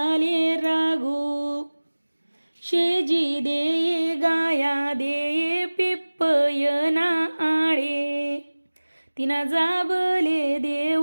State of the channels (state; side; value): inverted; both; correlation -1.00